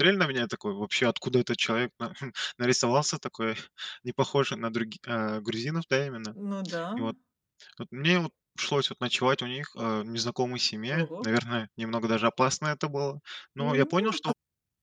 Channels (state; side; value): identical; both; correlation 1.00